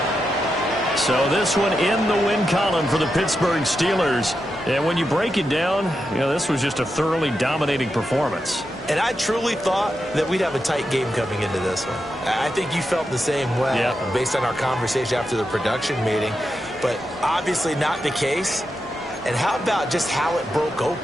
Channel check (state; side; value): normal; both; correlation 0.87